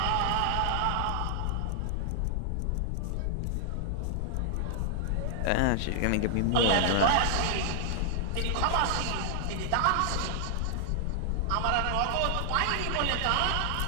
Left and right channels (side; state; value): both; different; correlation 0.00